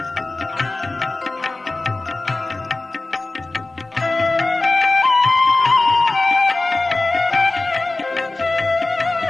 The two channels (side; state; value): right; quieter; 3.1 dB